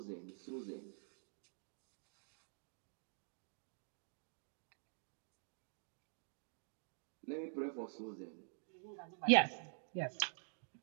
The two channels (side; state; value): left; silent; digital silence